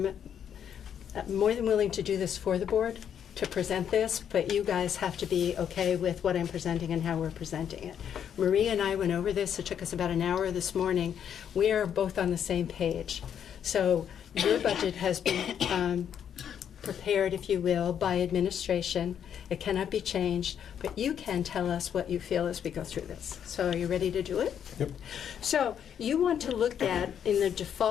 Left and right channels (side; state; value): right; quieter; 8.7 dB